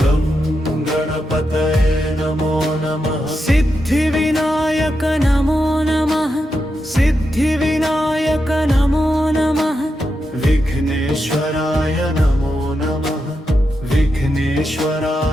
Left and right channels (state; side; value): normal; both; correlation 0.86